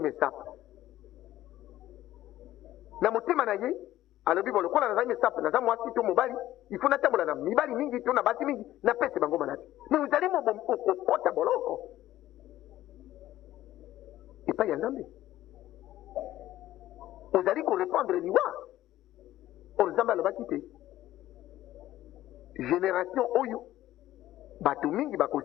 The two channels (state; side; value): quieter; right; 14.3 dB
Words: na motema na ye alobi bo lokola nazali mesape naza mwasi to mobali il faut natambola na mibali mingi to na basi mingi napese bango maladi mais ozali okokota boloko epai ya nzambe ozali korépandre liwa oyo nzambe alobaki te génération oyo bato mingi